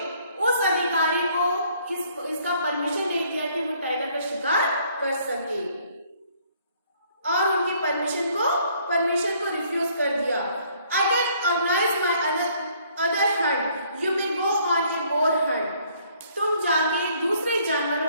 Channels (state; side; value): inverted; both; correlation -0.63